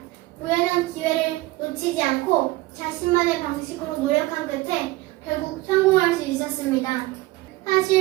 우연한 기회를 놓치지 않고 자신만의 방식으로 노력한 끝에 결국 성공할 수 있었습니다.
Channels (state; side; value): quieter; left; 19.5 dB